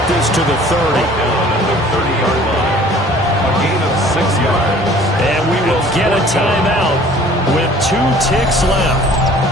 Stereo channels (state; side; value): normal; both; correlation 0.51